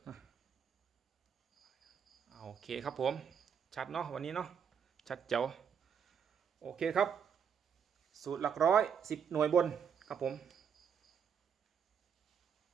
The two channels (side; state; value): left; quieter; 7.4 dB